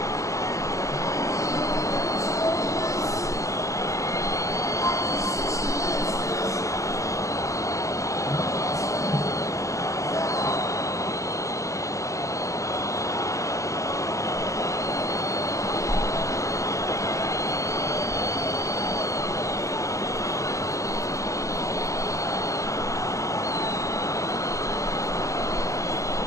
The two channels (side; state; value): right; late; 0.15 ms